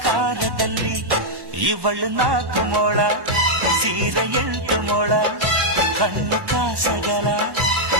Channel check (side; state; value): left; late; 1.2 ms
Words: ಇವಳು 4 ಮೊಳ ಸೀರೆ 8 ಮೊಳ, ಕಣ್ಣು ಕಾಸಗಲ